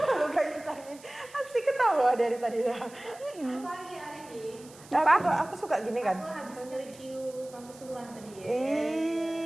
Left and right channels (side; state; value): right; noise; hiss, 22 dB below the sound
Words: lu gak Intan nih? Asik ketawa dari tadi dah. Pagi hari ini. Aku suka gini kan. Aku habis review kampus sebelah tadi ya.